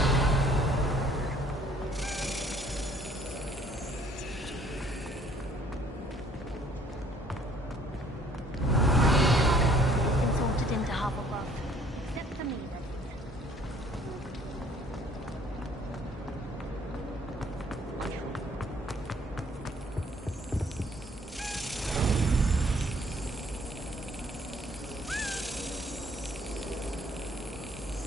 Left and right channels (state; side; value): normal; both; correlation 0.59